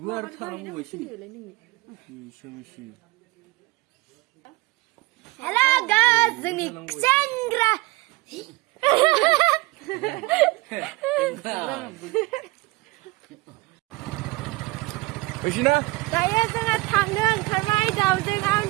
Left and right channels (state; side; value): quieter; left; 22.3 dB